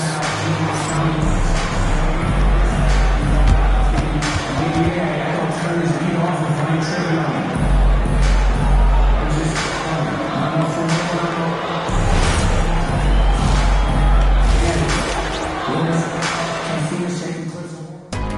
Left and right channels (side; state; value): both; identical; correlation 1.00